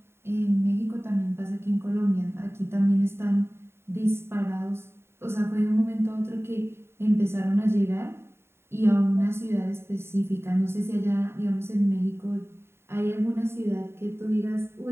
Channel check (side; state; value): left; late; 0.12 ms